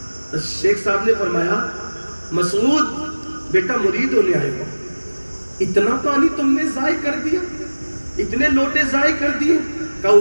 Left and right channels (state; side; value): inverted; both; correlation -1.00